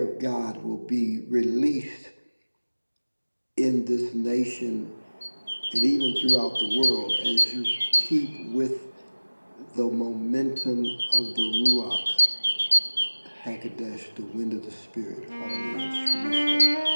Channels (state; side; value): inverted; both; correlation -1.00